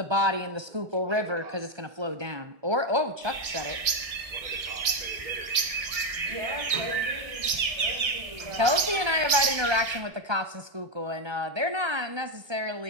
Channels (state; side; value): late; left; 1.6 ms